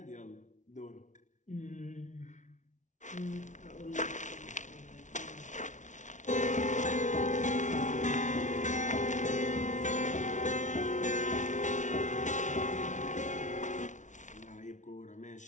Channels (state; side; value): late; right; 0.36 ms